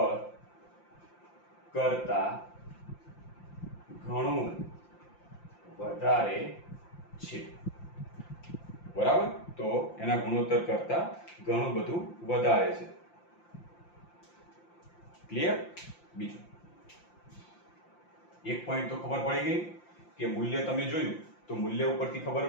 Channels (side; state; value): right; late; 5.8 ms